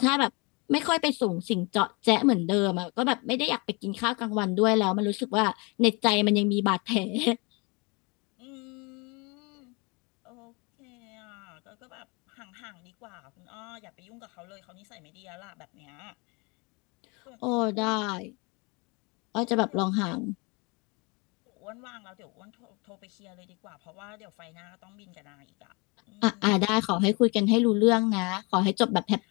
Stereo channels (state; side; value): quieter; right; 29.3 dB